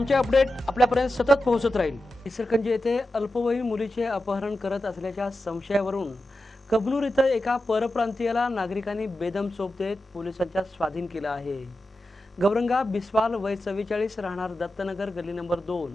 अपडेट आपल्यापर्यंत सतत पोहोचत राहील। इचलकरंजी येथे अल्पवयीन मुलीचे अपहरण करत असल्याच्या संशयावरून कबनूर इथं एका परप्रांतीयाला नागरिकांनी बेदम चोप देत पोलिसांच्या स्वाधीन केला आहे। गौरंगा बिस्वाल वय 44 राहणार दत्तनगर गल्ली नंबर 2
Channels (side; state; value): both; normal; correlation 0.91